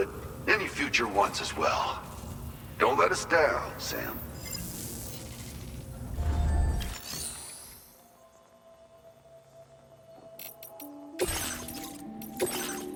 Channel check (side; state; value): both; identical; correlation 1.00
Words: any future ones as well. Don't let us down, Sam.